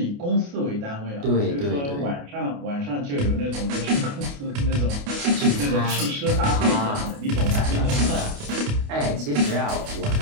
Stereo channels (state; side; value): late; left; 28 ms